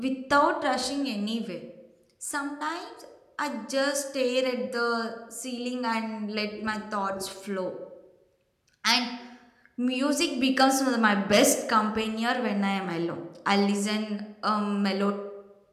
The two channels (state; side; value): identical; both; correlation 1.00